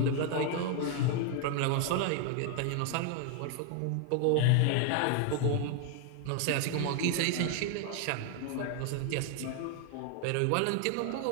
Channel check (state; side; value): different; both; correlation 0.00